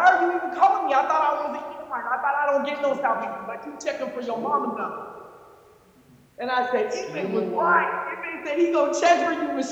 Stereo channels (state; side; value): identical; both; correlation 1.00